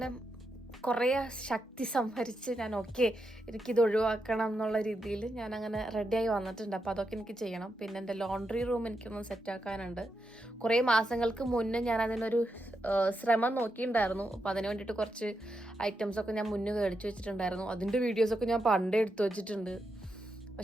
കുറേ ശക്തി സംഭരിച്ച് ഞാൻ എനിക്കിത് ഒഴിവാക്കണം എന്നുള്ള രീതിയിൽ ഞാനങ്ങനെ റെഡിയായി വന്നിട്ടുണ്ട്. അപ്പോൾ അതൊക്കെ എനിക്ക് ചെയ്യണം. പിന്നെ എൻ്റെ ലോണ്ടറി റൂം എനിക്കൊന്ന് സെറ്റാക്കാനുണ്ട്. കുറേ മാസങ്ങൾക്ക് മുന്നേ ഞാൻ അതിനൊരു ശ്രമം നോക്കിയിട്ടുണ്ടായിരുന്നു. അപ്പോൾ അതിന് വേണ്ടിയിട്ട് കുറച്ച് ഐറ്റംസൊക്കെ ഞാൻ മുന്നേ മേടിച്ച് വെച്ചിട്ടുണ്ടായിരുന്നു. അതിൻ്റെ വീഡിയോസൊക്കെ ഞാൻ പണ്ടേ എടുത്തു വെച്ചിട്ടുണ്ട്.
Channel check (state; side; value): normal; both; correlation 0.84